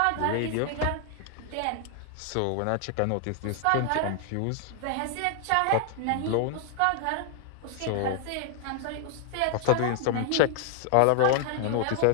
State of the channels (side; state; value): both; different; correlation 0.00